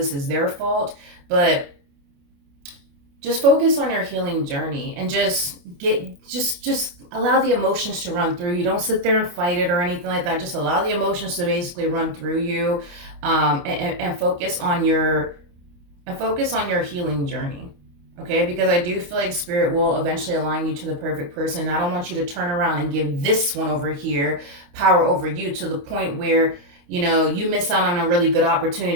is their fault. But just focus on your healing journey and just allow the emotions to run through you. Don't sit there and fight it or anything like that. Just allow the emotions to basically run through you, and focus on your healing journey. Okay, because I do feel like spirit will eventually align you to the perfect person. I don't want you to turn around and give this one over here power over you to the point where you miss out on a really good opportunity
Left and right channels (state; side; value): late; left; 29 ms